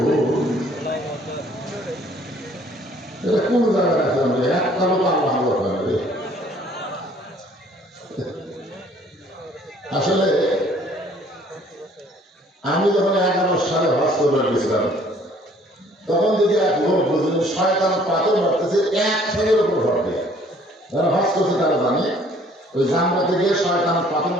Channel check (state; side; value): normal; both; correlation 0.58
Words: কোন জায়গায় আছে একটা লোক আল্লাহ করে। আসলে আমি যখন 11 সালে হজ করবার গেছিলাম তখন যদি এক লোক বুঝলেন শয়তান পাথর মারতেছে এক ঠেঙের উপর ভরতে, যারা হজ করছে তারা জানে ওই জানলাতে গিয়ে শয়তান পাথর